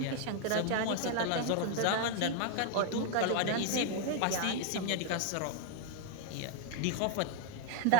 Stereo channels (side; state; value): both; different; correlation 0.01